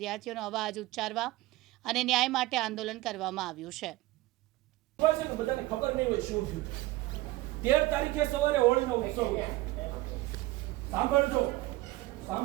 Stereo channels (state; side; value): quieter; left; 18.5 dB